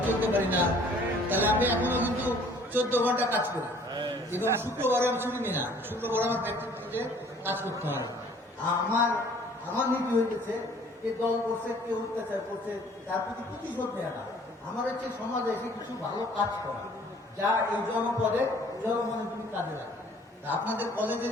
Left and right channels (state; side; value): normal; both; correlation 0.55